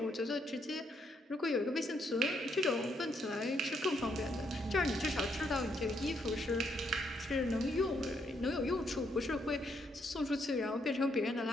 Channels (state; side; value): normal; both; correlation 0.75